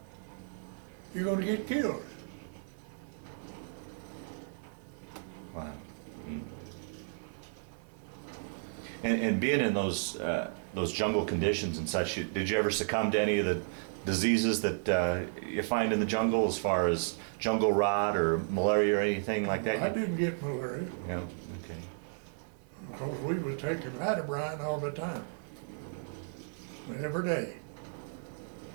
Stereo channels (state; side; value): silent; left; 55 dB below the other